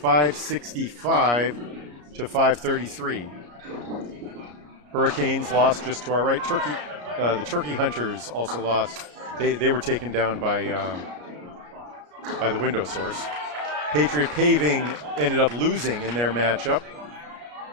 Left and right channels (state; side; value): late; left; 34 ms